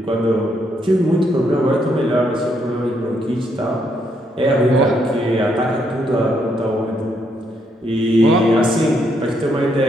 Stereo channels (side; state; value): both; normal; correlation 0.75